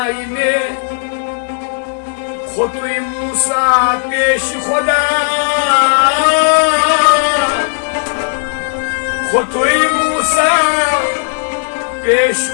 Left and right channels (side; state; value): right; silent; digital silence